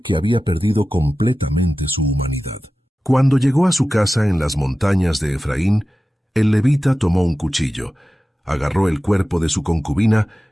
que había perdido completamente su humanidad. Cuando llegó a su casa en las montañas de Efraín, el levita tomó un cuchillo, agarró el cuerpo de su concubina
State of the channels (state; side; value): normal; both; correlation 0.95